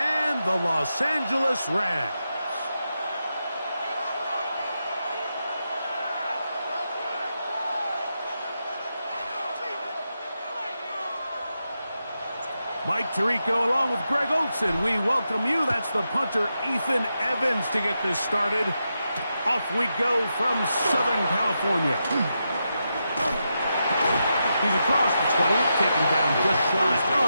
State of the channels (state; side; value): inverted; both; correlation -0.86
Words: the Los Angeles Rams. Mike Tirico along with Greg Olson. We welcome you. That's the punter, Ethan Evans, to get this started. Off we go from Southern California. He's across the 20, taken down just shy